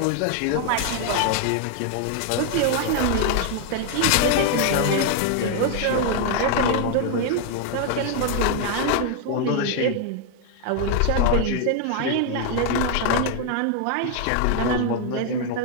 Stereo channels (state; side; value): different; both; correlation 0.00